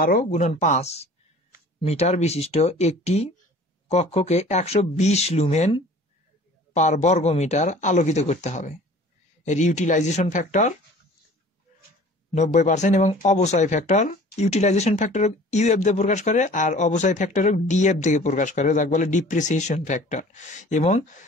গুণন 5 মিটার বিশিষ্ট একটি কক্ষকে 120 লুমেন পার বর্গমিটার আলোকিত করতে হবে। এর ইউটিলাইজেশন ফ্যাক্টর 90% এবং অবচয় ফ্যাক্টর, ইউটিলাইজেশন ফ্যাক্টর ইউএফ দিয়ে প্রকাশ করে আর অবচয় ফ্যাক্টর ডিএফ দিয়ে প্রকাশ করে, যাকে বলে ডিপ্রিসিয়েশন ফ্যাক্টর। এবং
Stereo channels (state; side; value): normal; both; correlation 0.47